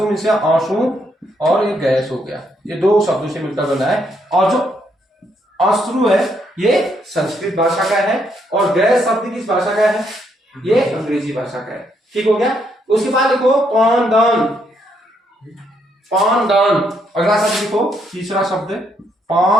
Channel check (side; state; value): both; normal; correlation 0.74